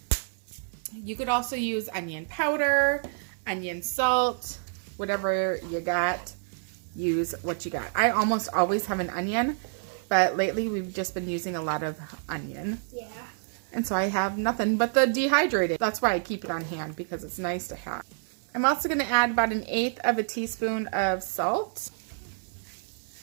You could also use onion powder, onion salt, whatever you got. Use what you got. I almost always have an onion, but lately we've just been using a lot of onion. Yeah. And so I have nothing but the dehydrated. That's why I keep it on hand, because it's nice to have. I'm also going to add about 1/8 of a teaspoon of salt.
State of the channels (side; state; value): left; silent; 59 dB below the other